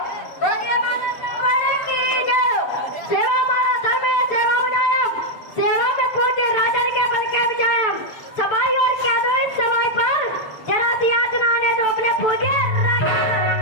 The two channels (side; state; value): right; late; 6.8 ms